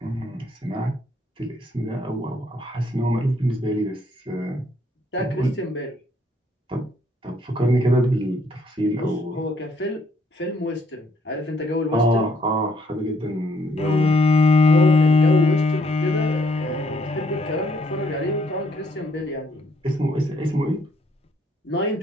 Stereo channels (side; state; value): both; normal; correlation 0.68